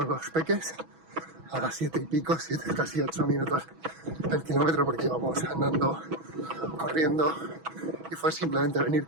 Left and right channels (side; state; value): left; late; 6.1 ms